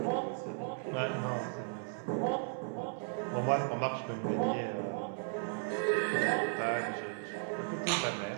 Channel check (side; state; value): left; silent; 54 dB below the other